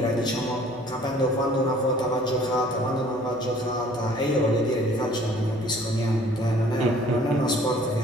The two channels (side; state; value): left; noise; hum, 29 dB below the sound